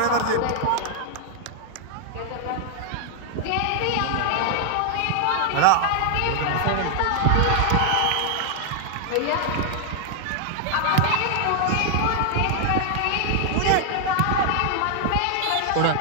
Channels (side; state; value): both; different; correlation 0.00